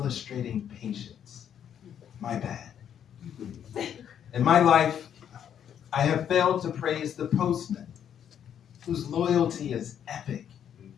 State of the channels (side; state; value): right; quieter; 9.1 dB